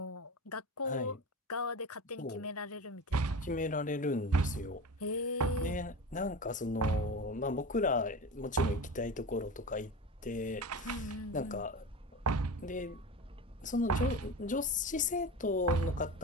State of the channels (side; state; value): both; normal; correlation 0.28